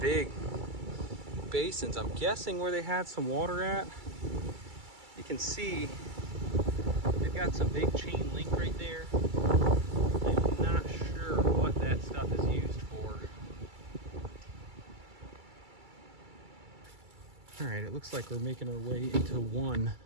basins. I'm guessing where they had some water at. You can see they've got some big chain link right there. I'm not sure what that stuff is used for. All right, it looks like we're making our way into one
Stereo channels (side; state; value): left; late; 2.3 ms